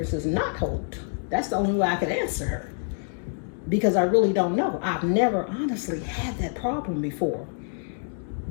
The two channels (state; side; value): silent; right; digital silence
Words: not hold? That's the only way I could answer her. Because I really don't know. I've never honestly had that problem before